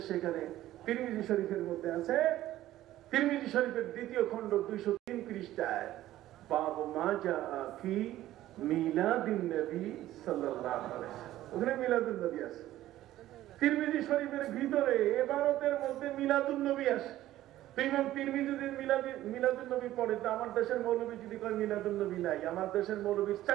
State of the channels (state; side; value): quieter; left; 14.4 dB